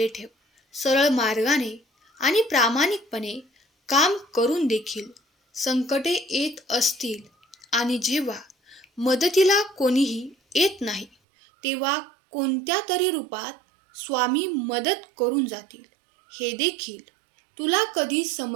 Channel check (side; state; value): left; drops out; at 11.1 s